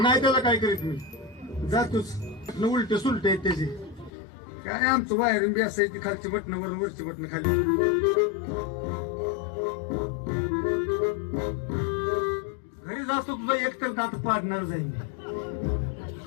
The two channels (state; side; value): drops out; right; at 4.1 s